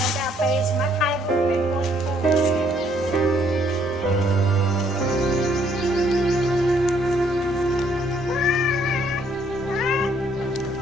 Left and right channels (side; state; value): both; normal; correlation 0.66